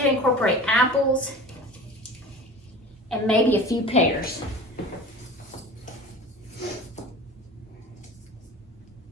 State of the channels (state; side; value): normal; both; correlation 0.37